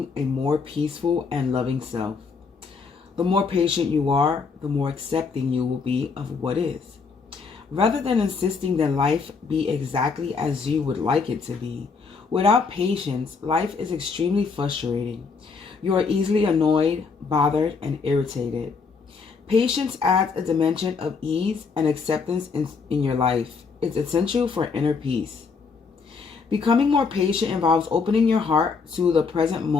a more peaceful and loving self. The more patient you are, the more accepting you will be of what is. Rather than insisting that life be exactly as you would like it to be, without patience, life is extremely frustrating. You are easily annoyed, bothered, and irritated. Patience adds a dimension of ease and acceptance in your life. It's essential for inner peace. Becoming more patient involves opening your heart to the present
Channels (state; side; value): quieter; right; 5.0 dB